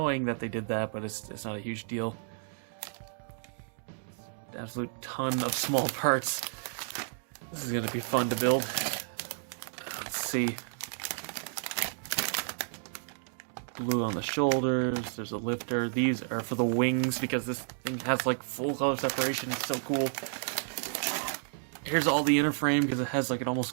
that they did that, but it's not a huge deal. Absolute ton of small parts. This is gonna be fun to build. Let's see. Blue on the shoulders, there's a lifter. These are for the wings because this thing has like full color separation. It's so cool. Here's all the inner frame because it has like an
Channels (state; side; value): silent; left; 56 dB below the other